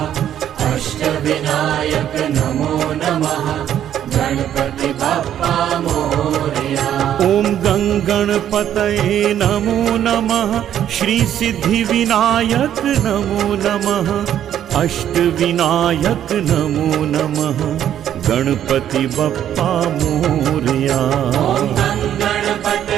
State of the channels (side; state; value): left; quieter; 10.5 dB